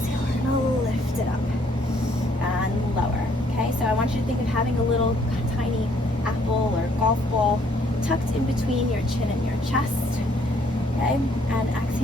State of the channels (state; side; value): normal; both; correlation 0.65